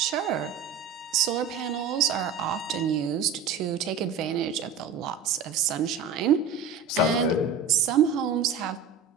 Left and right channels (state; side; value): quieter; left; 5.8 dB